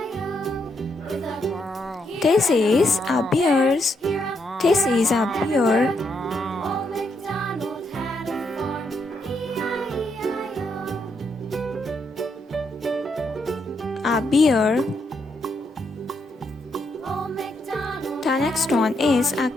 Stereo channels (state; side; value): normal; both; correlation 0.78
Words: This is a bears. This is a bear. A bear. The next one is a